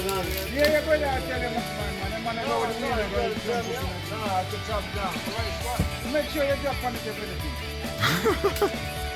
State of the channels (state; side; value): identical; both; correlation 1.00